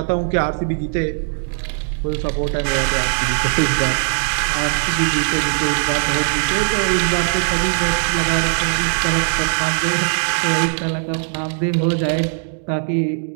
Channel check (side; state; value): left; silent; 66 dB below the other